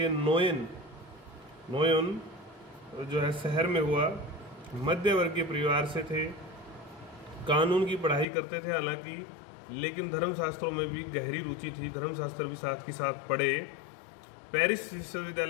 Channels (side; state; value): right; drops out; at 8.2 s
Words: नोयन जो है शहर में हुआ। मध्य वर्गीय परिवार से थे, कानून की पढ़ाई करते थे हालांकि, लेकिन धर्मशास्त्रों में भी गहरी रुचि थी। धर्मशास्त्र भी साथ के साथ पढ़े। पेरिस